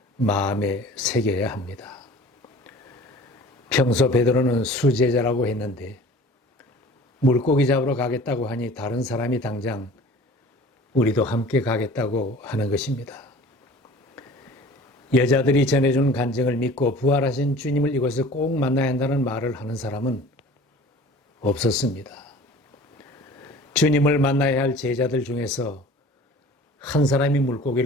마음에 새겨야 합니다. 평소 베드로는 수제자라고 했는데 물고기 잡으러 가겠다고 하니 다른 사람이 당장 우리도 함께 가겠다고 하는 것입니다. 여자들이 전해준 간증을 믿고 부활하신 주님을 이곳에서 꼭 만나야 한다는 말을 하는 사람은 없었습니다. 주님을 만나야 할 제자들 중에서 한 사람이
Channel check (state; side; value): normal; both; correlation 0.45